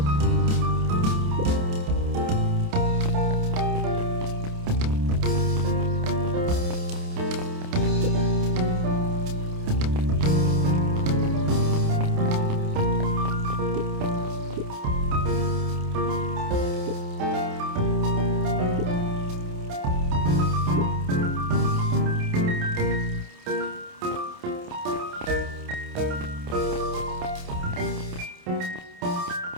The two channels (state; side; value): late; left; 28 ms